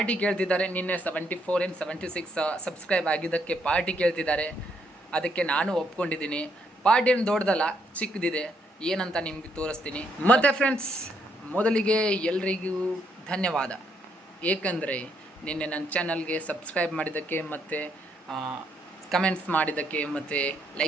ಕೇಳ್ತಿದ್ದಾರೆ. ನಿನ್ನೆ 74 and 76 ಸಬ್ಸ್ಕ್ರೈಬ್ ಆಗಿದ್ದಕ್ಕೆ ಪಾರ್ಟಿ ಕೇಳ್ತಿದ್ದಾರೆ. ಅದಕ್ಕೆ ನಾನು ಒಪ್ಕೊಂಡಿದ್ದೀನಿ. ಪಾರ್ಟಿ ಏನು ದೊಡ್ಡದಲ್ಲ, ಚಿಕ್ಕದಿದೆ. ಏನಂತ ನಿಮಗೆ ತೋರಿಸ್ತೀನಿ. ಮತ್ತು ಫ್ರೆಂಡ್ಸ್, ಮೊದಲಿಗೆ ಎಲ್ರಿಗೂ ಧನ್ಯವಾದ. ಏಕೆಂದರೆ ನಿನ್ನೆ ನನ್ನ ಚಾನಲ್ಗೆ ಸಬ್ಸ್ಕ್ರೈಬ್ ಮಾಡಿದ್ದಕ್ಕೆ ಮತ್ತು ಕಮೆಂಟ್ಸ್ ಮಾಡಿದ್ದಕ್ಕೆ ಮತ್ತು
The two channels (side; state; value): both; normal; correlation 0.74